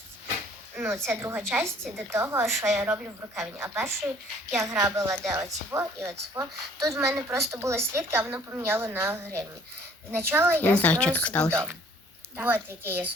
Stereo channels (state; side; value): normal; both; correlation 0.56